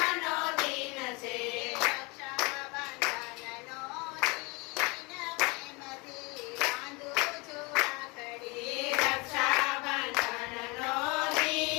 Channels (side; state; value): right; quieter; 27.7 dB